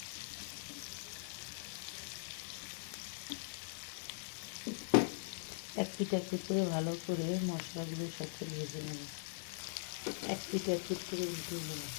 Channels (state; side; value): silent; right; 50 dB below the other